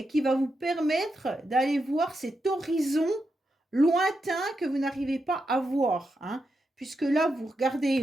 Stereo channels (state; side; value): normal; both; correlation 0.85